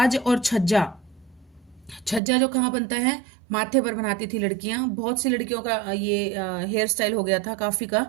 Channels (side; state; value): left; drops out; at 2.2 s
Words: और छज्जा, छज्जा जो कहाँ बनता है, माथे पर बनाती थी लड़कियां। बहुत सी लड़कियों का ये हेयर स्टाइल हो गया था, काफी का